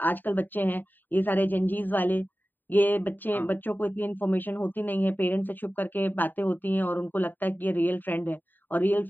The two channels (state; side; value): late; right; 0.090 ms